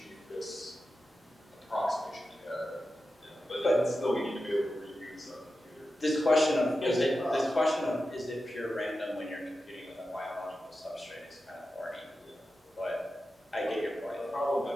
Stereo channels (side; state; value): both; normal; correlation 0.92